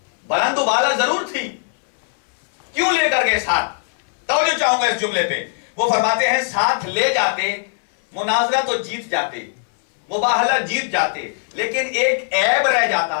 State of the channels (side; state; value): right; silent; digital silence